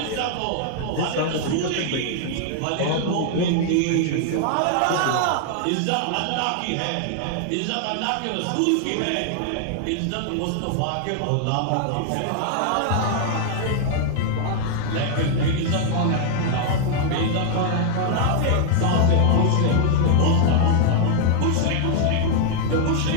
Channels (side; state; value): both; different; correlation 0.00